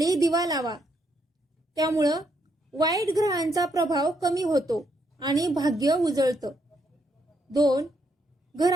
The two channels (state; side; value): normal; both; correlation 0.76